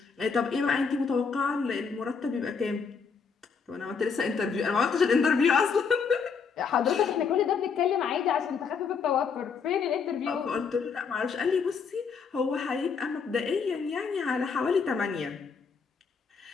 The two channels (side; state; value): right; quieter; 5.7 dB